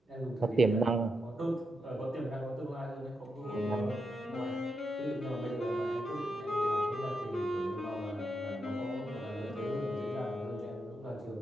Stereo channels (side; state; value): both; normal; correlation 0.84